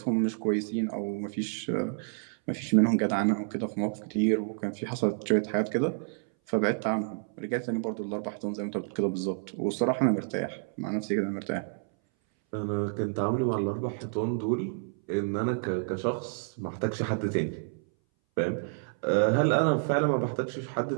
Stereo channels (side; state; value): left; silent; 58 dB below the other